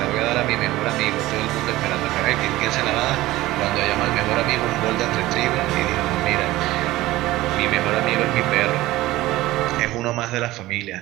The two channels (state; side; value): quieter; left; 17.4 dB